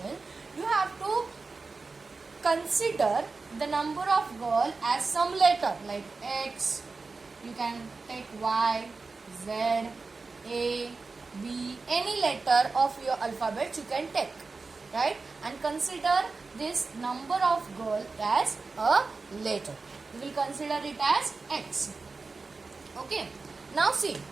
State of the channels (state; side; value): quieter; left; 4.1 dB